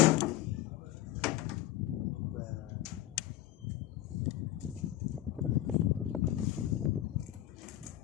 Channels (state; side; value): quieter; right; 14.3 dB